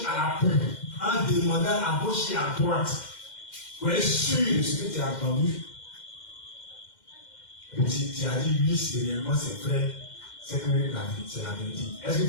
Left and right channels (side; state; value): right; late; 2.1 ms